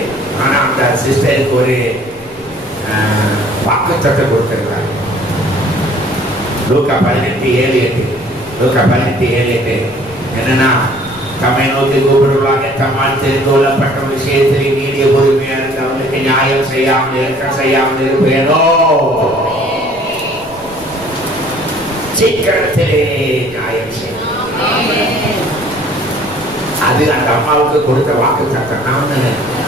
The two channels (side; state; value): left; noise; rumble, 23 dB below the sound